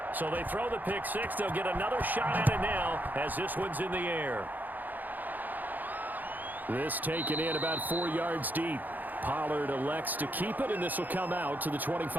So they throw the pick 6. They'll get another shot at it now as this one's in the air. This taken in about 4 yards deep. Pollard elects to keep it, and this will come out to the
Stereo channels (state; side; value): late; left; 0.084 ms